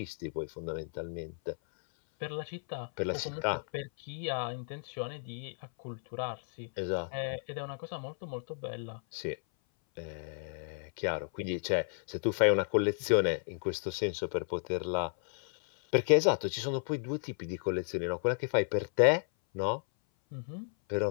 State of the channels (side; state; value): right; silent; 56 dB below the other